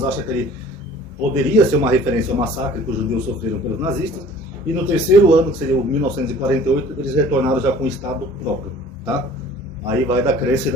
acham que ele poderia ser uma referência ao massacre que os judeus sofreram pelos nazistas. E no terceiro ano, que seria o 1948, eles retornaram já com o Estado próprio, tá? Aí vai da crença e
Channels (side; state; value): both; normal; correlation 0.49